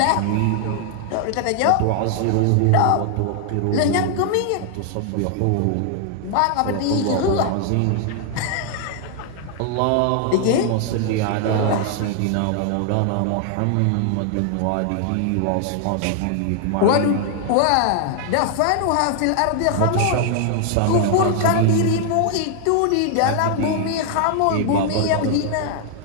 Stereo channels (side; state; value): both; different; correlation 0.00